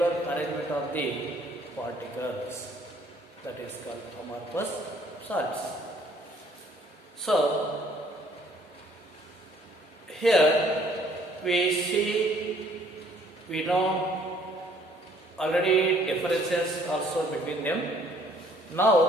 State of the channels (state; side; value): normal; both; correlation 0.61